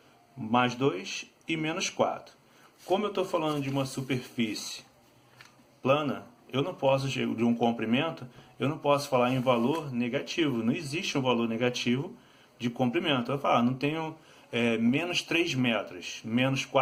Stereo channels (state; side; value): identical; both; correlation 1.00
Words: Mais 2 e menos 4. Como eu estou falando de uma superfície plana, eu não posso, de um comprimento, eu não posso falar em valor negativo. Não existe um valor negativo de comprimento. Eu vou falar, não tenho menos 3 metros, menos